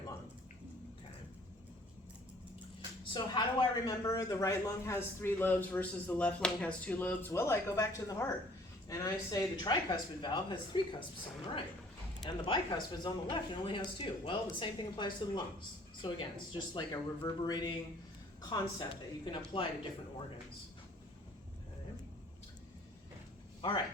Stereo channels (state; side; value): normal; both; correlation 0.56